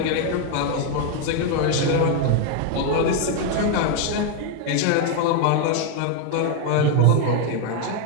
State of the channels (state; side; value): different; both; correlation 0.01